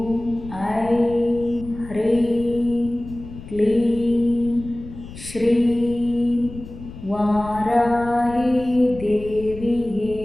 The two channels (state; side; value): noise; left; rumble, 14 dB below the sound